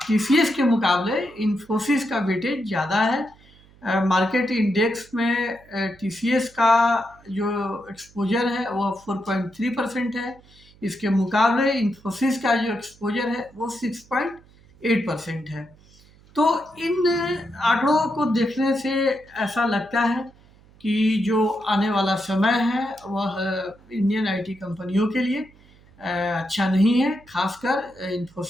टीसीएस के मुकाबले इन्फोसिस का वेटेज ज़्यादा है। मार्केट इंडेक्स में टीसीएस का जो एक्सपोजर है वह 4.3% है, इसके मुकाबले इन्फोसिस का जो एक्सपोजर है वो 6.8% है। तो इन आंकड़ों को देखने से ऐसा लगता है कि जो आने वाला समय है वह इंडियन आईटी कंपनियों के लिए अच्छा नहीं है, खासकर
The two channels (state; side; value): noise; right; hum, 27 dB below the sound